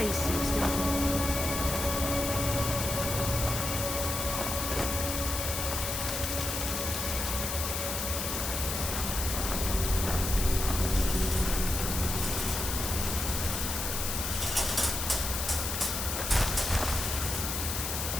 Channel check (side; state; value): left; noise; hiss, 2 dB below the sound